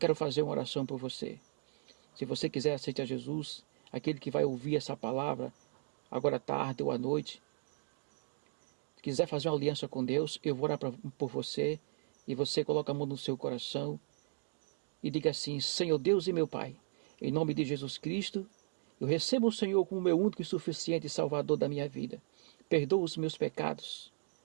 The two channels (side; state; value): left; silent; digital silence